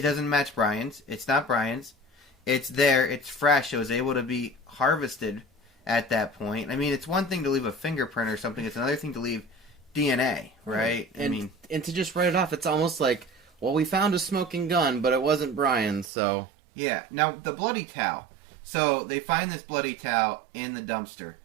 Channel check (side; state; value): left; drops out; at 16.1 s